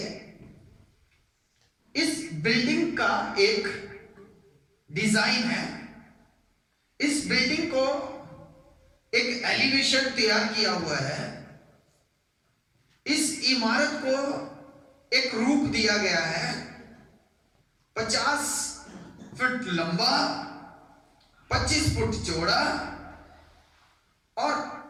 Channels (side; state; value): both; identical; correlation 1.00